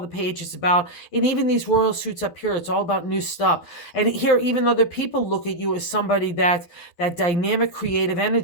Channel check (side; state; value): right; late; 12 ms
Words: page is about. And even these royal suits up here, it's all about new stuff. And here, even other people look at you as somebody that dynamic creative